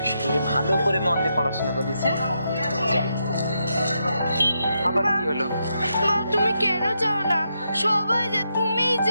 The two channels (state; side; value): inverted; both; correlation -0.82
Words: ভালো করে মন দিয়ে পড়াশোনা করিস। আবার কি হলো? মা তুমি কেন যাও না? সবাই যায়, তুমিই